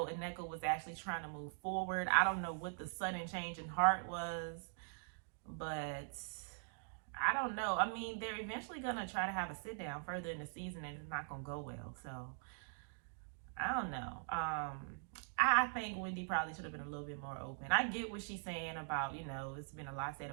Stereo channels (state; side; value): silent; left; digital silence